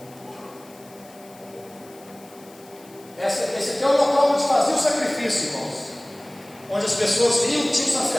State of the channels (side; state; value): left; noise; hiss, 24 dB below the sound